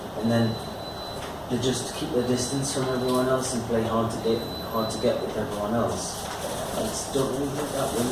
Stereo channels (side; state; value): both; identical; correlation 1.00